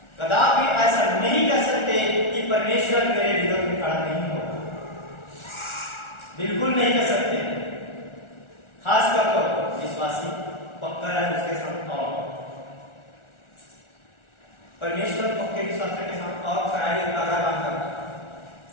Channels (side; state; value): right; late; 1.4 ms